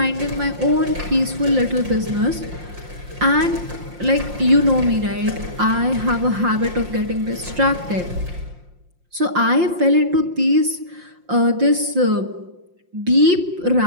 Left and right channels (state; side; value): late; left; 5.7 ms